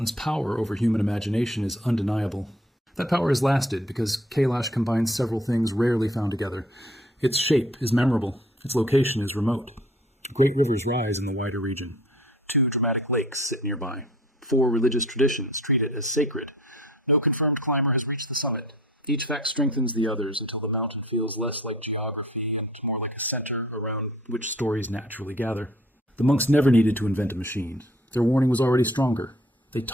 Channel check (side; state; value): both; normal; correlation 0.53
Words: power over human imagination is undeniable. That power has lasted because Kailash combines several things rarely found together. Its shape is memorable. Its location is remote. Great rivers rise in the wider region. 2 dramatic lakes sit nearby. 4 religious traditions treat it as sacred. No confirmed climber has reached the summit. Each fact strengthens the others until the mountain feels less like geography and more like a center around which stories naturally gather. The monks never needed to invent a machine. Their warning was already stronger. They